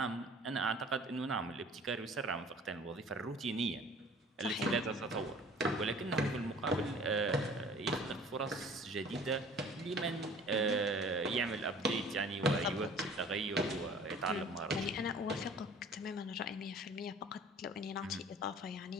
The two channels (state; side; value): normal; both; correlation 0.49